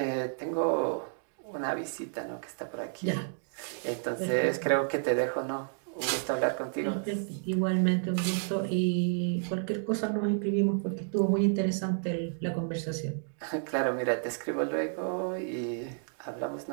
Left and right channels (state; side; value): silent; left; digital silence